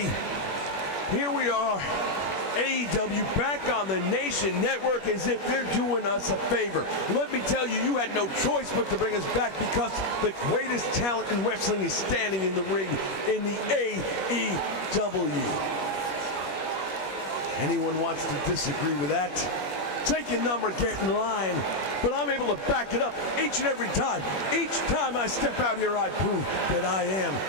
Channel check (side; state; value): right; late; 21 ms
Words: here we are, AEW back on the Nation Network as if they're doing us a favor. Let me tell you, you had no choice but to bring us back because the greatest talent in wrestling is standing in the ring in the AEW. Anyone wants to disagree with that? Take your number, get in line. But I'm able to back it up each and every time. Each time I step out here, I prove that I am